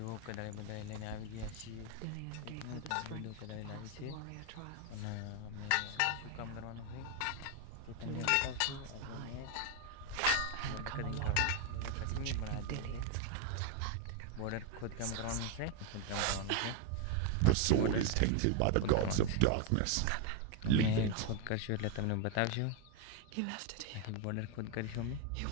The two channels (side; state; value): both; different; correlation 0.01